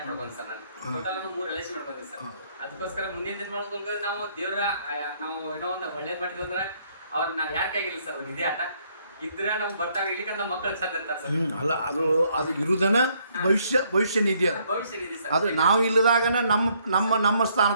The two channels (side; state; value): both; inverted; correlation -0.68